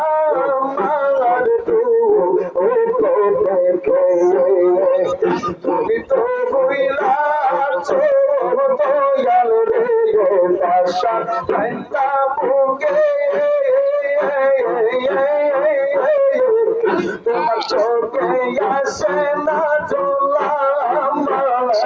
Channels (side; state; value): both; identical; correlation 1.00